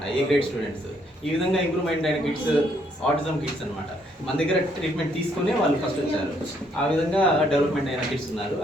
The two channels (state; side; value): normal; both; correlation 0.70